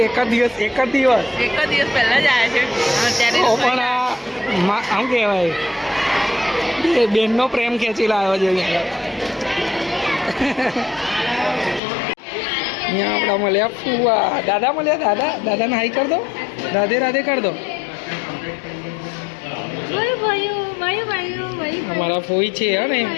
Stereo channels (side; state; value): right; drops out; at 11.8 s